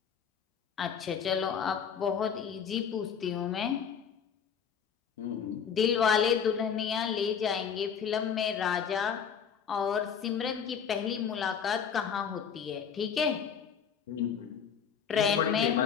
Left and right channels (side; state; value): right; quieter; 7.3 dB